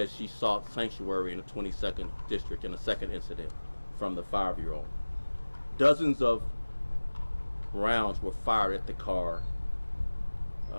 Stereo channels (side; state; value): both; inverted; correlation -1.00